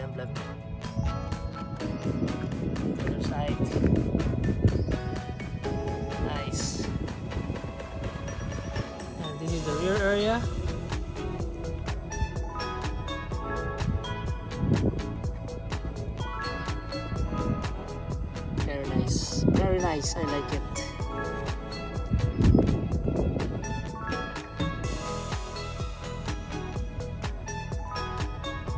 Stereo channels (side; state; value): both; identical; correlation 1.00